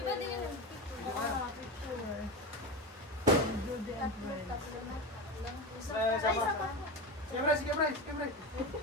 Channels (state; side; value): normal; both; correlation 0.21